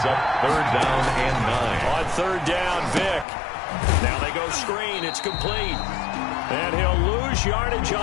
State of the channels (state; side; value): drops out; right; at 3.2 s